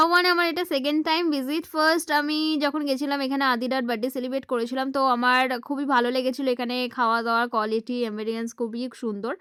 ওয়ানে আমার এটা সেকেন্ড টাইম ভিজিট। ফার্স্ট আমি যখন গেছিলাম এখানে আদিরার বার্থডে সেলিব্রেট করেছিলাম, তো আমার খুবই ভালো লেগেছিলো। এখানে খাওয়া দাওয়ার কোয়ালিটি এম্বিয়েন্স খুবই সুন্দর।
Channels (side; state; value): both; identical; correlation 1.00